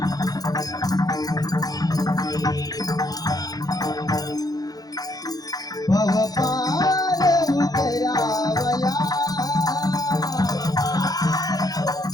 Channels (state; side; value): late; right; 0.18 ms